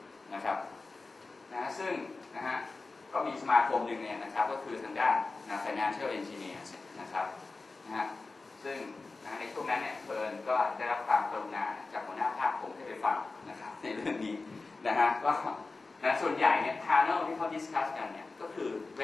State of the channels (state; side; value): quieter; right; 3.7 dB